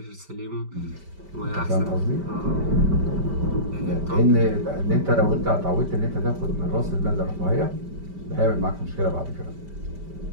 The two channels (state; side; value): late; left; 5.1 ms